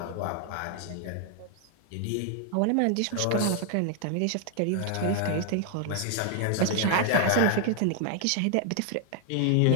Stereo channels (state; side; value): different; both; correlation 0.00